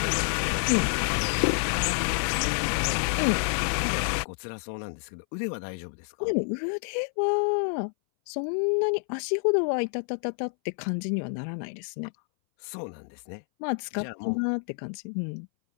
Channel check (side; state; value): right; silent; 59 dB below the other